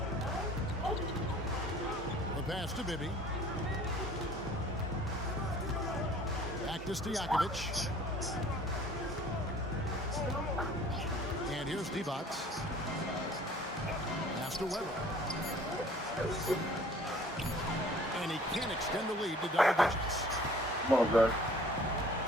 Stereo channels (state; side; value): normal; both; correlation 0.51